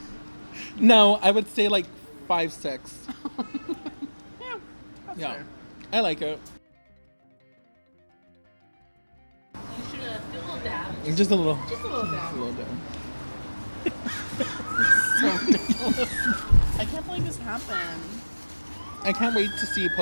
No, I would say like 5, 6. Yeah. That's Yeah. fair. I like it. You should do a little dab. Just a little. Just a little Just a down. little down. So ridiculous. I can't believe this happened. I can't wait to see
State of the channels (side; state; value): both; inverted; correlation -1.00